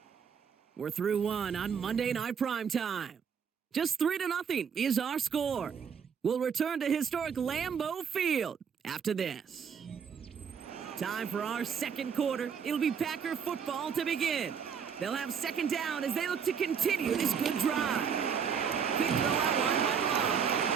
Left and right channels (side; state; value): left; quieter; 7.0 dB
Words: We're through 1 on Monday Night Primetime. Just 3-0 is our score. We'll return to historic Lambeau Field after this. Time for our 2nd quarter. It'll be Packer football to begin. They'll have 2nd down as they look to continue this good drive. Quick throw out line by